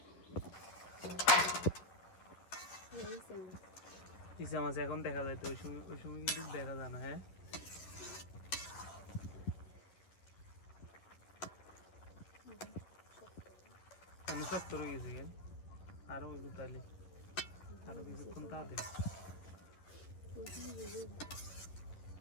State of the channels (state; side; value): late; right; 11 ms